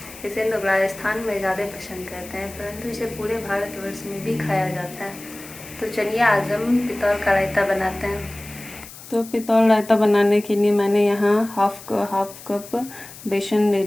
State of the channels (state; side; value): noise; left; hiss, 17 dB below the sound